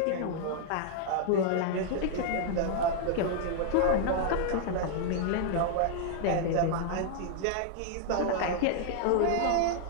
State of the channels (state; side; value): different; both; correlation -0.01